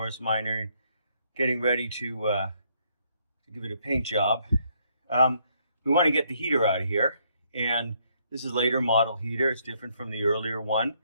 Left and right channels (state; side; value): inverted; both; correlation -0.71